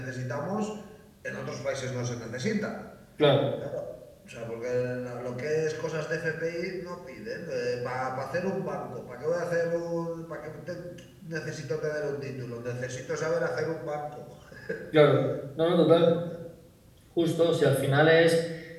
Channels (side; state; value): both; identical; correlation 1.00